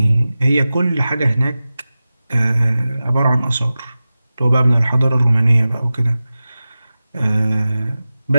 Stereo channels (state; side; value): inverted; both; correlation -0.95